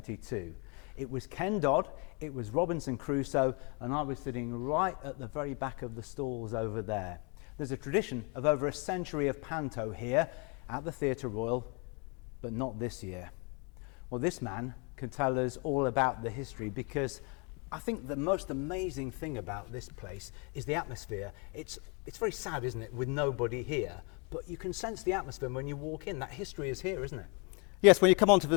It was Ken Dodd, it was Robinson Crusoe, and I was sitting right at the very back of the stalls over there. There's a tradition of over a century of panto here at the Theatre Royal, but not this year. Well, this man can tell us all about the history, because I think the most amazing thing about this place is the atmosphere. It's very sad, isn't it, with nobody here, but you can sense the atmosphere when you walk in. That history is here, isn't it? Yes, when you come onto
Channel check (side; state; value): right; quieter; 33.6 dB